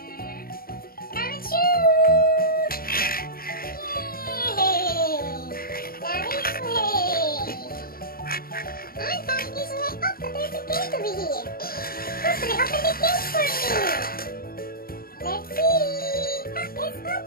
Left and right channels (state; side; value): late; right; 0.43 ms